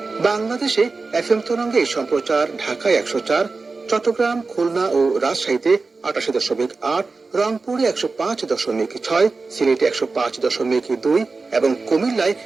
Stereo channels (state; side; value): quieter; left; 4.0 dB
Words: বাংলাদেশে এফএম তরঙ্গে এই সম্প্রচার ঢাকায় 104, চট্টগ্রাম, খুলনা ও রাজশাহীতে 88.8, রংপুরে 105.6, সিলেটে 105.2 এবং কুমিল্লায়